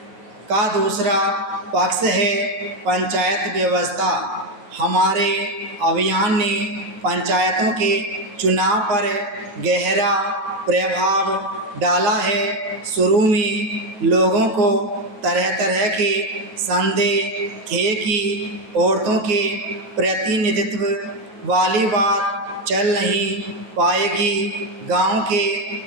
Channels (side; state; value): left; late; 9.3 ms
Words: का दूसरा पक्ष है पंचायत व्यवस्था। हमारे अभियान ने पंचायतों के चुनाव पर गहरा प्रभाव डाला है। शुरू में लोगों को तरह तरह के संदेह थे कि औरतों के प्रतिनिधित्व वाली बात चल नहीं पाएगी। गांव के